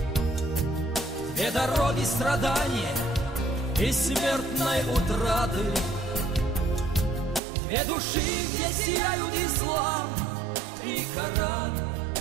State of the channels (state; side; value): drops out; left; at 7.4 s